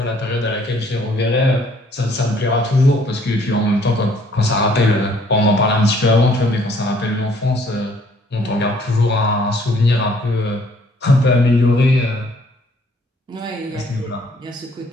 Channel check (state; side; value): normal; both; correlation 0.61